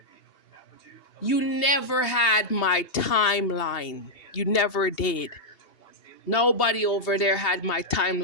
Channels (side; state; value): right; late; 2.7 ms